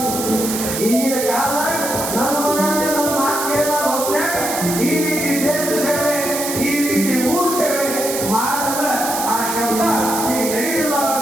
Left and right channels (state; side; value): noise; right; hiss, 4 dB below the sound